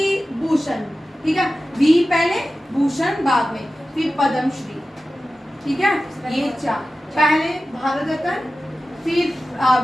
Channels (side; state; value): both; normal; correlation 0.94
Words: ठीक है, वी पहले भूषण बाद में, फिर पद्म श्री, ठीक है। ये चार, पहले भारत रत्न, फिर